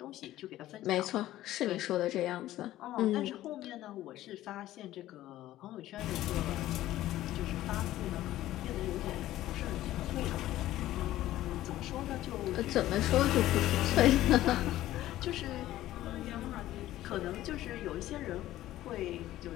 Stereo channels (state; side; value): quieter; right; 14.6 dB